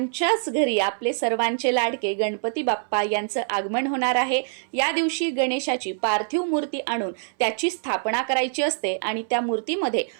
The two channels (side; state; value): left; silent; 62 dB below the other